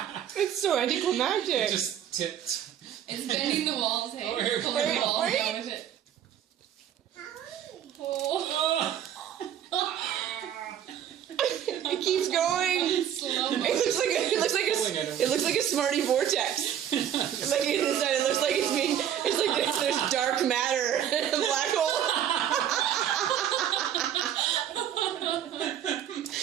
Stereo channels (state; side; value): quieter; left; 10.0 dB